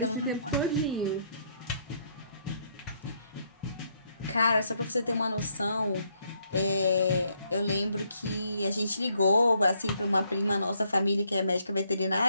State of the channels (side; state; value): both; inverted; correlation -0.72